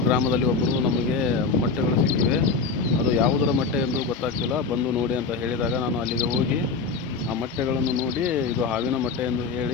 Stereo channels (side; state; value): right; quieter; 4.6 dB